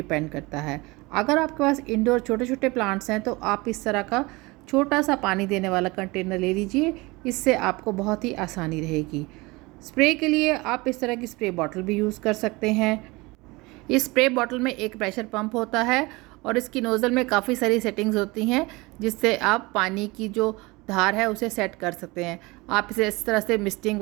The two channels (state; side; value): quieter; left; 23.5 dB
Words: करता है। अगर आपके पास इंडोर छोटे छोटे प्लांट्स हैं तो आप इस तरह का छोटा सा पानी देने वाला कंटेनर ले लीजिए, इससे आपको बहुत ही आसानी रहेगी। स्प्रे के लिए आप इस तरह की स्प्रे बॉटल भी यूज़ कर सकते हैं। इस स्प्रे बॉटल में एक प्रेशर पंप होता है और इसकी नोज़ल में काफ़ी सारी सेटिंग्स होती हैं जिससे आप पानी की जो धार है उसे सेट कर सकते हैं। आप इसे इस तरह से मिस्टिंग